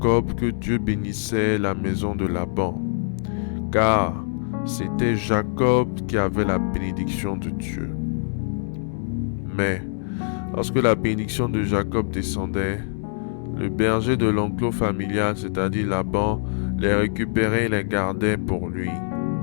que Dieu bénissait la maison de Laban, car c'était Jacob qui avait la bénédiction de Dieu. Mais lorsque la bénédiction de Jacob descendait, le berger de l'enclos familial, c'est-à-dire Laban, les récupérait et les gardait pour lui.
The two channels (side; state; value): right; silent; digital silence